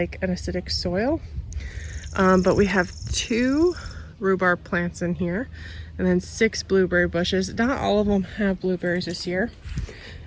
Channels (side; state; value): both; identical; correlation 1.00